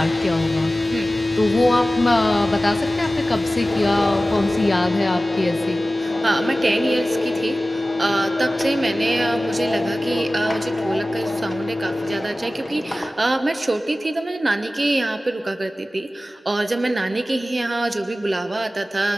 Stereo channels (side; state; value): both; normal; correlation 0.96